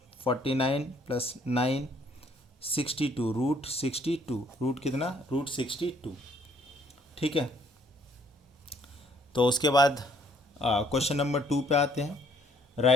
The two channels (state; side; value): normal; both; correlation 0.63